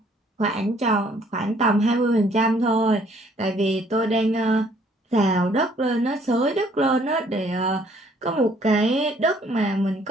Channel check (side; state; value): both; normal; correlation 0.62